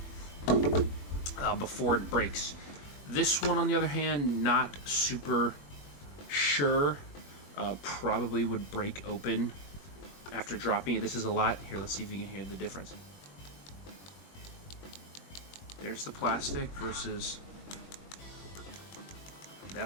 before it breaks. This one, on the other hand, not super sure. Probably would break open after dropping it. This is a lot. Here, let's see if you can hear the difference. There's the plastic versus...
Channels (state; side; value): late; right; 21 ms